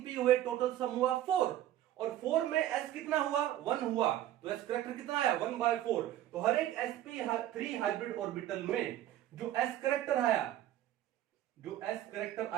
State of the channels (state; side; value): quieter; left; 12.9 dB